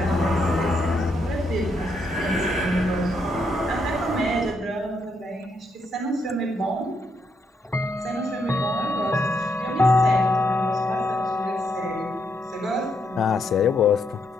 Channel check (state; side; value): normal; both; correlation 0.77